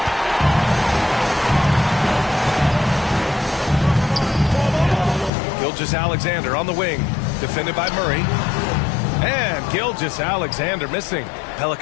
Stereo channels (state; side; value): drops out; right; at 5.3 s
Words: Gilgeous-Alexander on the wing, defended by Murray. And Gilgeous-Alexander missing.